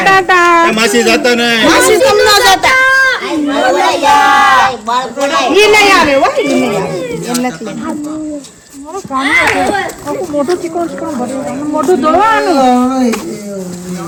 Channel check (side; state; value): both; identical; correlation 1.00